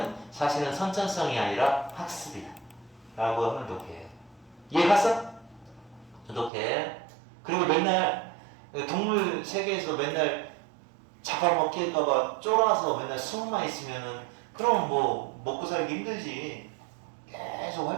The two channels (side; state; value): left; drops out; at 6.5 s